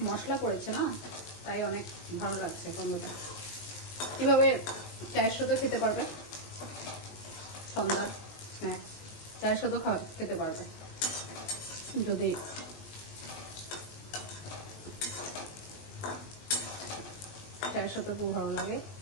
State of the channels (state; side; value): late; right; 20 ms